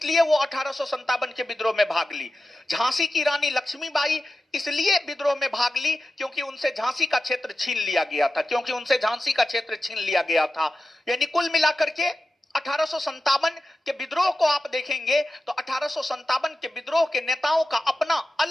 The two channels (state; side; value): normal; both; correlation 0.93